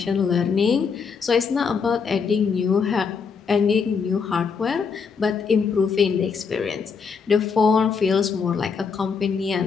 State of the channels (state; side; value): quieter; right; 5.7 dB